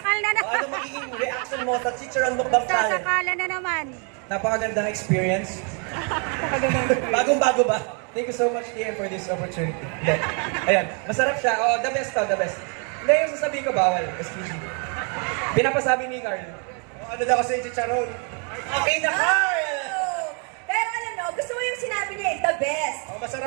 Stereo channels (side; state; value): left; quieter; 38.5 dB